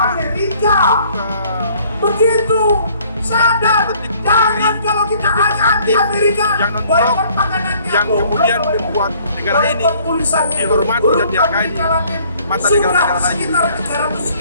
begitu sadar, jangan kalau kita anti Amerika yang non-blok yang kemudian membuat negara ini dihormati dan dihargai di mata negara-negara lain.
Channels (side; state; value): both; inverted; correlation -0.59